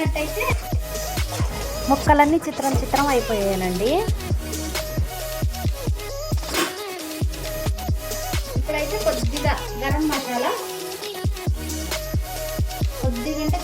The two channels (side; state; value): both; identical; correlation 1.00